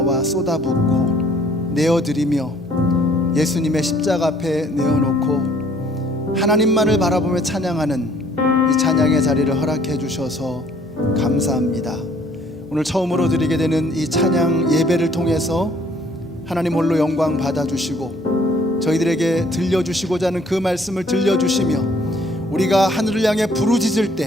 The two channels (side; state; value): both; normal; correlation 0.60